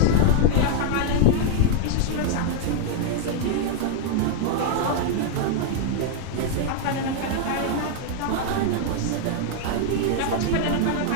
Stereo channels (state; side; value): different; both; correlation -0.01